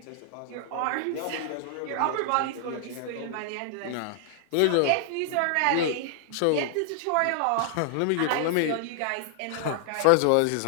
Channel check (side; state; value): both; different; correlation 0.00